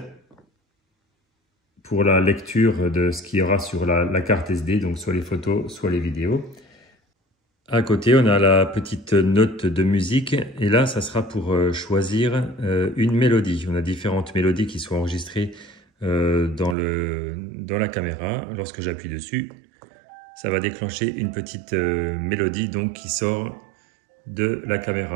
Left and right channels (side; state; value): left; drops out; at 16.8 s